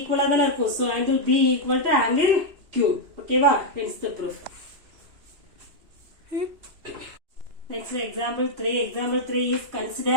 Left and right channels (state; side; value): late; left; 2.8 ms